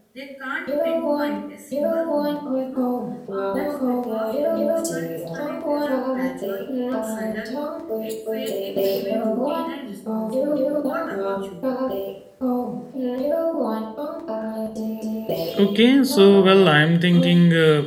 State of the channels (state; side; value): identical; both; correlation 1.00